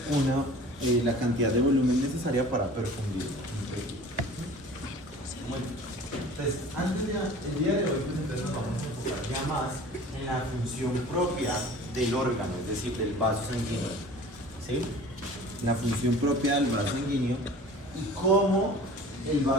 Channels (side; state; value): both; normal; correlation 0.44